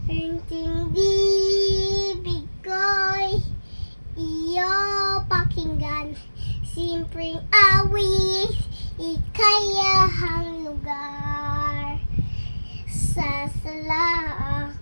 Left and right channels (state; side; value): inverted; both; correlation -1.00